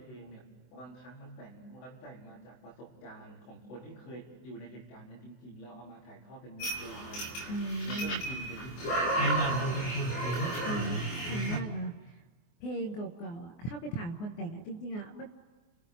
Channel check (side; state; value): right; late; 24 ms